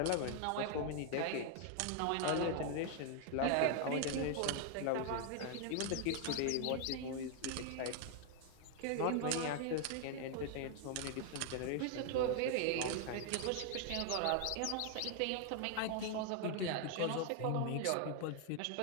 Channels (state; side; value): different; both; correlation 0.00